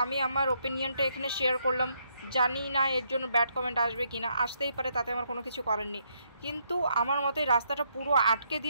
আমি আমার ওপিনিয়নটা এখানে শেয়ার করলাম, জানি না এর জন্য ব্যাড কমেন্ট আসবে কিনা, আসতেই পারে, তাতে আমার কোনো কিছু করার নেই। কিন্তু আমার মতে রাস্তাটা পুরো আটকে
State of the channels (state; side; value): inverted; both; correlation -0.74